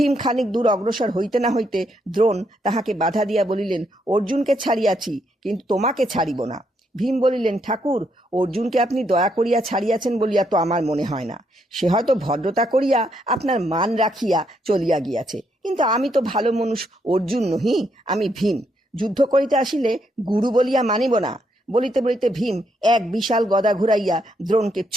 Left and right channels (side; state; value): both; normal; correlation 0.76